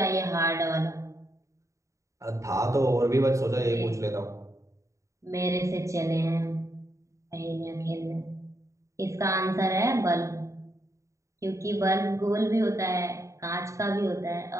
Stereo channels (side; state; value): left; late; 0.15 ms